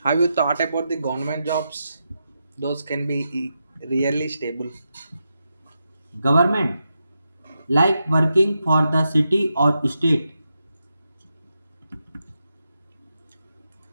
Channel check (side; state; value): both; inverted; correlation -0.87